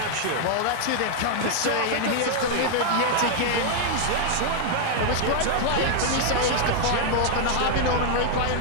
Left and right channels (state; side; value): different; both; correlation 0.00